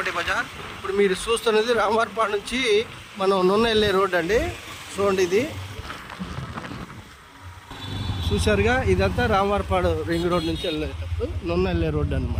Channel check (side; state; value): both; identical; correlation 1.00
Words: bazaar. ఇప్పుడు మీరు చూస్తున్నది రామవారపాడు నుంచి మనం నున్న వెళ్ళే రోడ్ అండి. చూడండి, ఇది చూసారుగా, ఇదంతా రామవారపాడు రింగ్ రోడ్ నుంచి వెళ్ళేటప్పుడు నున్న వెళ్ళే రోడ్డు